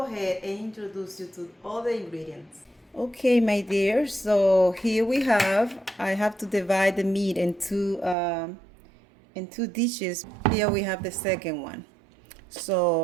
ahead and introduce you to all the ingredients. Okay, my dear, so here I have to divide the meat in two dishes. Here we have the second one.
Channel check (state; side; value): drops out; left; at 8.2 s